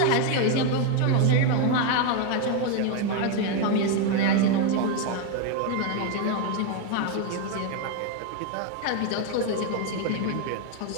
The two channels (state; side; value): different; both; correlation 0.01